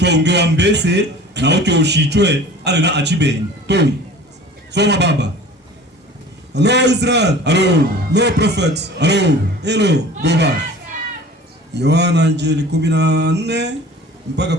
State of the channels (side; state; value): both; normal; correlation 0.43